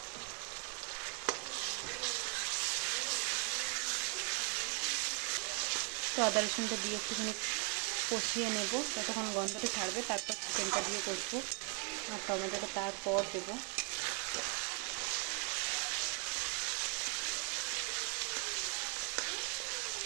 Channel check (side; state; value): left; quieter; 36.1 dB